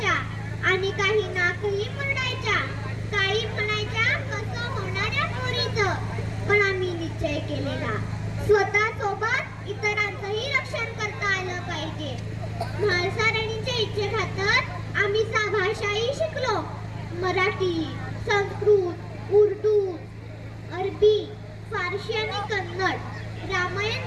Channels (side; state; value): both; identical; correlation 1.00